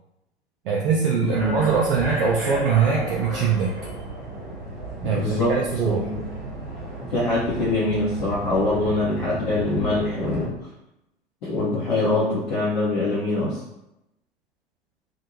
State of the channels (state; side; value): normal; both; correlation 0.32